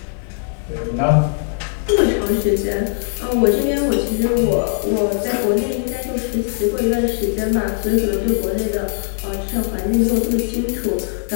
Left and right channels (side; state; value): right; silent; digital silence